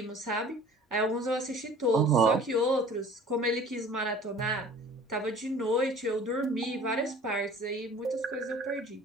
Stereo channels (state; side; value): normal; both; correlation 0.47